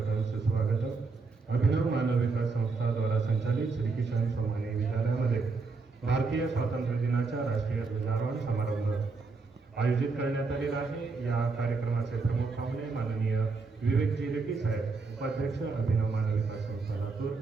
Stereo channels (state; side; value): quieter; left; 4.2 dB